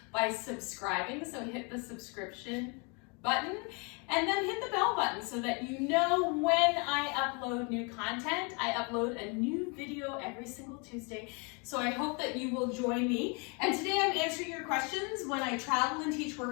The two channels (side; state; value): right; quieter; 33.1 dB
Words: by subscribing. So hit the subscription button and then hit the bell button so that you know when I upload new content. I upload a new video every single Tuesday. So I hope that you will join me. And today I'm answering your questions. When I travel and teach